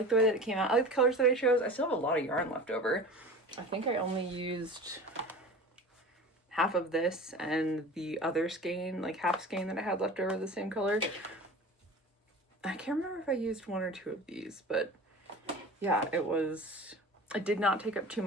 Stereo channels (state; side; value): normal; both; correlation 0.36